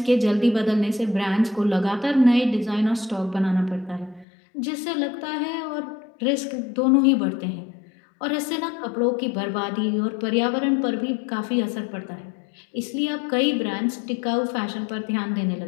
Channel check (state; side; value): drops out; right; at 4.2 s